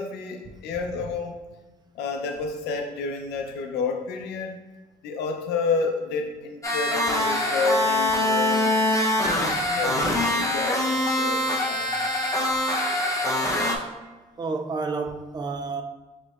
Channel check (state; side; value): normal; both; correlation 0.37